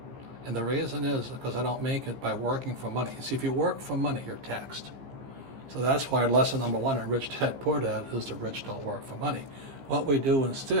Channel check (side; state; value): left; late; 15 ms